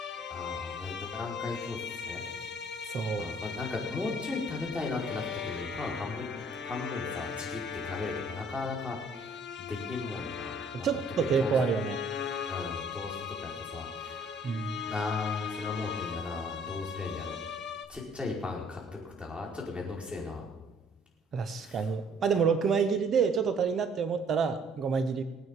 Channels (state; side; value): normal; both; correlation 0.58